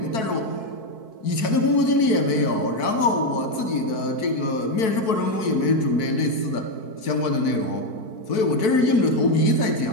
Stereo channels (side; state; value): right; late; 4.6 ms